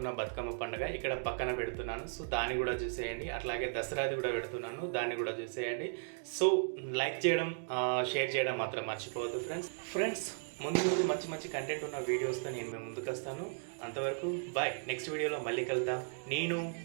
బతుకమ్మ పండుగ ఇక్కడ పక్కన పెడుతున్నాను. సో దాన్ని కూడా చూసేయండి. అట్లాగే దసరాది కూడా పెడుతున్నాను, దాన్ని కూడా చూసేయండి. సో లైక్ చేయడం, షేర్ చేయడం మాత్రం మర్చిపోవద్దు ఫ్రెండ్స్. ముందు మంచి మంచి కంటెంట్ ఉన్న వీడియోస్తో నేను మేము ముందుకు వస్తాను. అంతవరకు బాయ్. నెక్స్ట్ వీడియోలో మళ్ళీ కలుద్దాం. నేను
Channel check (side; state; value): left; silent; digital silence